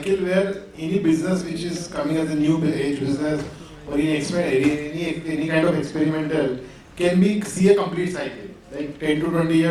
where any business which is coming as a new age business or any kind of experimental can see a complete cycle. Like 10 to 20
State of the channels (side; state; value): both; identical; correlation 1.00